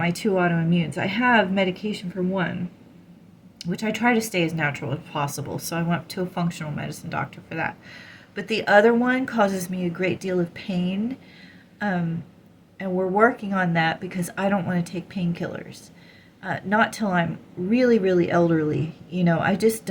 2 autoimmunes. I have medication for one, which I try to stay as natural as possible. So I went to a functional medicine doctor for that. But the other one causes me a great deal of pain. And we're working on that because I don't want to take painkillers. Not till I'm really, really elderly. You know, I just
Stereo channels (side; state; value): both; identical; correlation 1.00